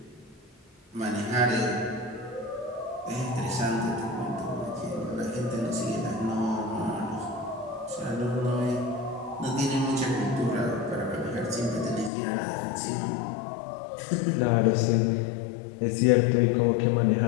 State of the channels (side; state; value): right; drops out; at 12.1 s